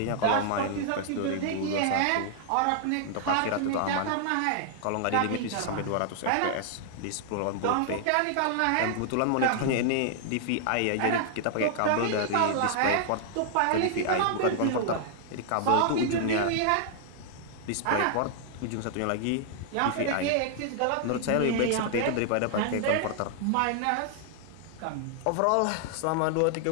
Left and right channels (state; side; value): different; both; correlation -0.01